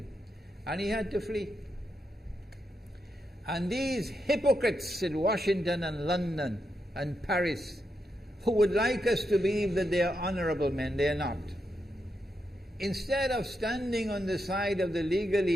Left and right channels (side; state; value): both; normal; correlation 0.84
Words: And he had to flee. And these hypocrites in Washington and London and Paris who would like us to believe that they are honorable men. They are not. Instead of standing on the side of the